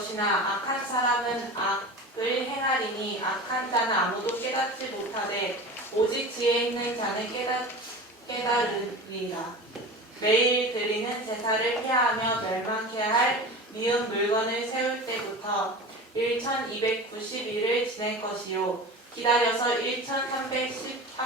악한 사람은 악을 행하리니 악한 자는 아무도 깨닫지 못하되 오직 지혜 있는 자는 깨달으리라. 매일 드리는 제사를 피하며 멸망케 할 미운 물건을 세울 때부터 1290일을 지낼 것이요 기다려서 1300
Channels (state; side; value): normal; both; correlation 0.32